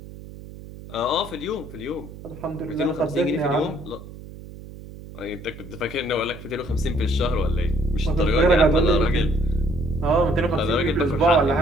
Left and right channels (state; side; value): noise; right; hum, 15 dB below the sound